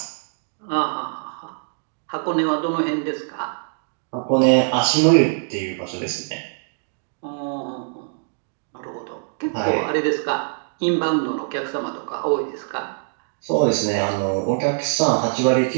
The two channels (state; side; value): silent; left; digital silence